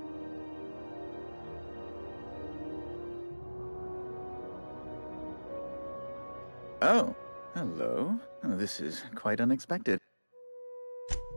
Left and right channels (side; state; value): both; inverted; correlation -1.00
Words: Oh, hello. Oh, this is quite unexpected.